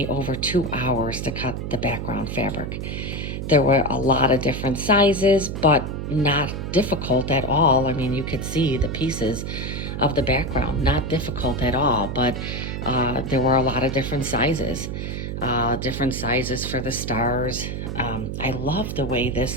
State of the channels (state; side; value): noise; right; hum, 5 dB below the sound